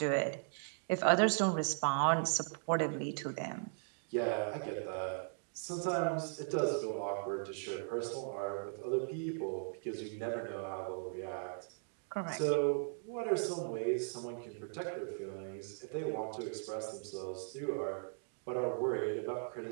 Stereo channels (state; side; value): silent; left; digital silence